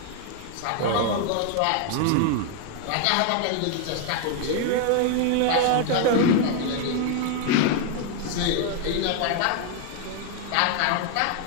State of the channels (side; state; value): both; different; correlation 0.00